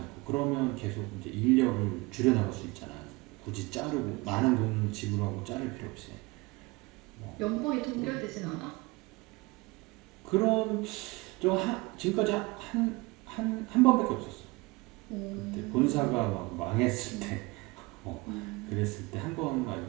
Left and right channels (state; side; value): quieter; left; 23.9 dB